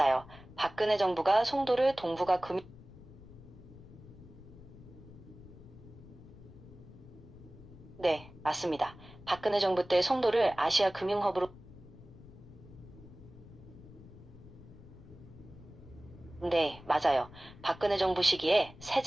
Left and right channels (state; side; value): noise; left; rumble, 18 dB below the sound